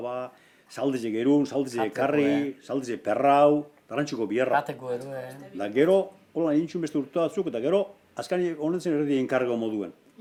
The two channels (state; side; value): identical; both; correlation 1.00